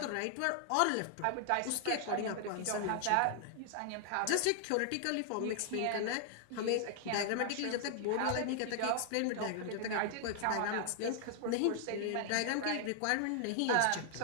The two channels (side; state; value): both; different; correlation 0.00